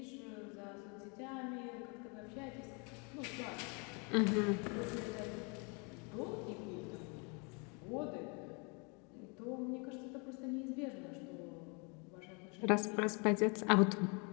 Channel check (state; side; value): quieter; right; 33.2 dB